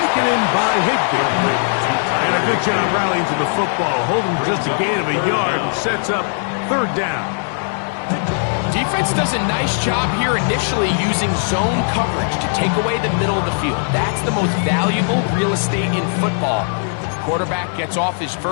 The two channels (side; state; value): right; silent; 67 dB below the other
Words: in by Higbee. And a good job rallying to the football, holding just a gain of a yard and sets up third down. Defense does a nice job here initially using zone coverage to take away the middle of the field. That's the most valuable real estate in football. Quarterback gets off his